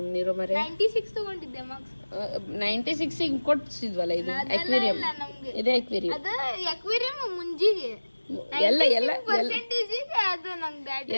ಮರೆ. 96 ತಗೊಂಡಿದ್ದೆ ಮಾರ್ಕ್ಸ್. 96 ಕೊಡ್ಸಿದ್ವಲ್ಲ, ಇದು ಅಕ್ವೇರಿಯಂ. ಇದೇ ಅಕ್ವೇರಿಯಂ. ಅದು ಅಕ್ವೇರಿಯಂ ಮುಂಜಿಗೆ ಎಲ್ಲ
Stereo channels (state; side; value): inverted; both; correlation -1.00